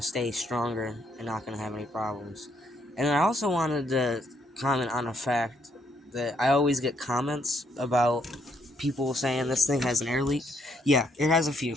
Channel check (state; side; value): normal; both; correlation 0.72